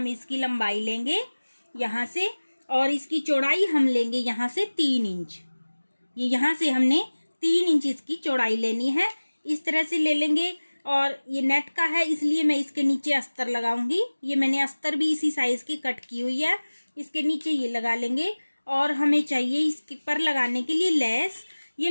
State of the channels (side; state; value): both; inverted; correlation -1.00